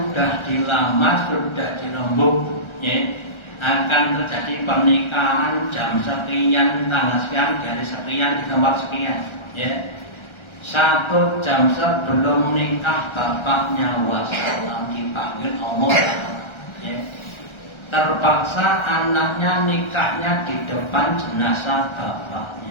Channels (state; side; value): late; right; 1.3 ms